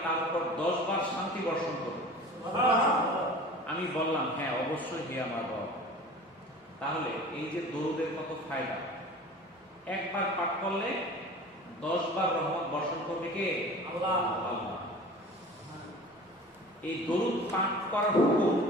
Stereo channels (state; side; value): normal; both; correlation 0.41